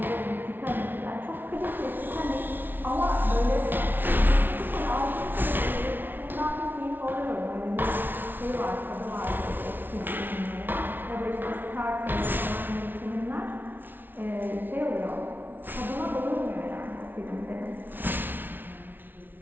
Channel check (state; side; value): late; left; 0.094 ms